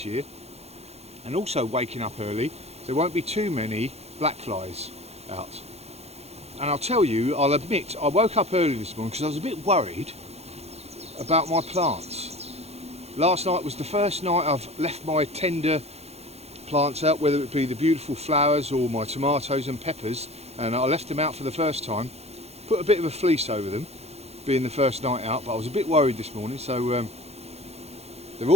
year. And also, waking up early, there won't be too many black flies out. And I'll admit, I woke up early this morning because I was a bit worried about my plants. Last night was the first night I've left my tender plants out, whether it be the beautiful flowers or my tomatoes and peppers, and I left them out for the first time, put a bit of a fleece over them, being the first night out, but I was a bit worried this morning, so they're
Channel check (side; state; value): left; late; 0.31 ms